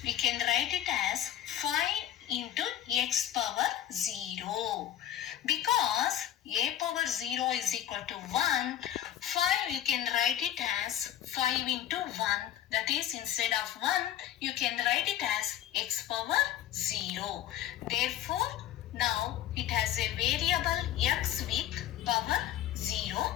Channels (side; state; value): right; quieter; 11.6 dB